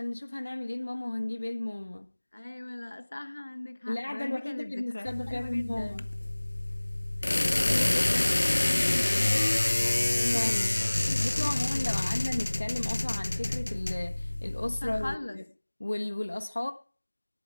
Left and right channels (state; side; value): inverted; both; correlation -1.00